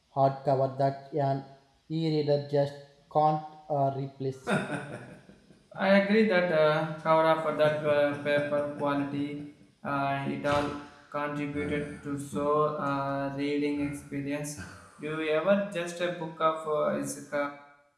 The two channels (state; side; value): identical; both; correlation 1.00